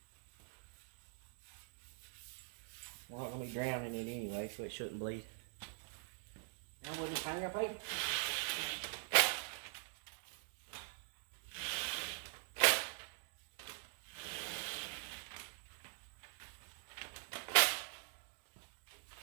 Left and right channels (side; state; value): left; silent; digital silence